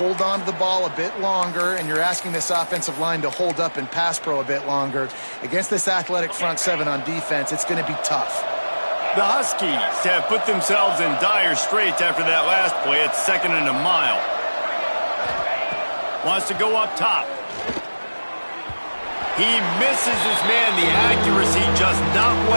on to the ball a bit longer, and you're asking this offensive line to hold up in pass pro a bit longer. Against this athletic front seven on defense, it's going to be tough. The Huskies have put themselves in dire straits after that last play. It's 2nd and a mile. Wants to go up top. He misses his man. The accuracy just not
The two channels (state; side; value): inverted; both; correlation -1.00